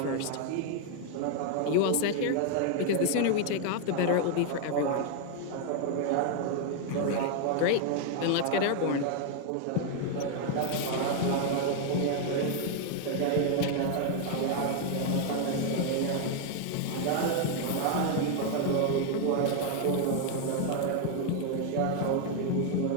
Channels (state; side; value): different; both; correlation 0.00